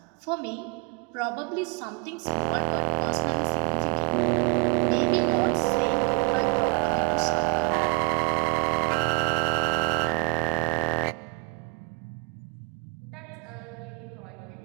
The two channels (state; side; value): quieter; left; 32.2 dB